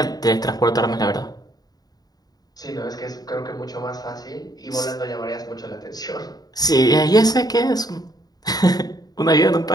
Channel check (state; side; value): late; right; 0.19 ms